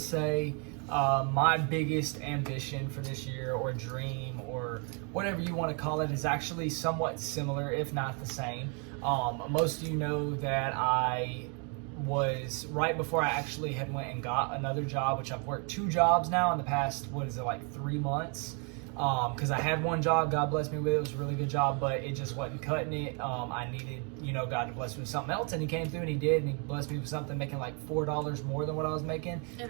my biggest ambition for this year, or dream, or whatever you want to call it, is actually somewhat similar, if not the same. Most of you know that I was, right before I actually had went and got another job, which I've worked 2 jobs now in the past, 3 months. Because I had one job, God bless me with it. It was a really good job, but it just wasn't cutting it. I needed, you know, God to bless me with something else, and He came through and He did, and He blessed me with something making like $4 more than what I was making.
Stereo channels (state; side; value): quieter; left; 36.5 dB